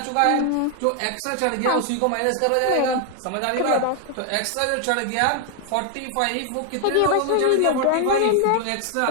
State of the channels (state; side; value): different; both; correlation 0.00